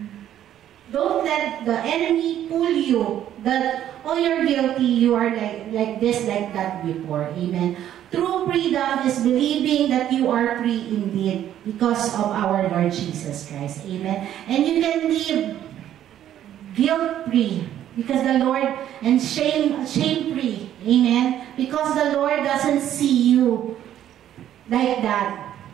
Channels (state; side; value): quieter; left; 11.3 dB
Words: let the enemy pull you that, oh, you're guilty, you are like this, like that before. Amen. True freedom is believing that you are free indeed because of our Lord Jesus Christ. Amen. And you can live guilt-free because the Lord, and shame-free. Amen. Because the Lord doesn't see you like that.